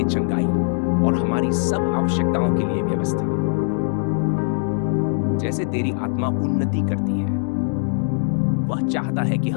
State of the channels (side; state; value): right; silent; 65 dB below the other